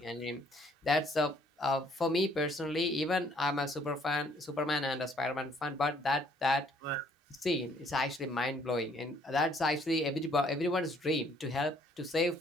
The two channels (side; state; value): both; normal; correlation 0.63